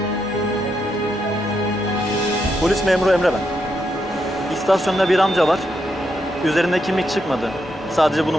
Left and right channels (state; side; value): normal; both; correlation 0.81